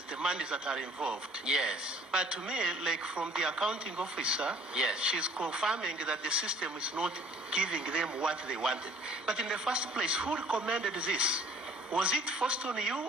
the monies that are involved. Yes. But to me, like from the accounting officer, yes, she's confirming that the system is not giving them what they wanted. But in the first place, who recommended this? Was it forced on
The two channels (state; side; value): normal; both; correlation 0.53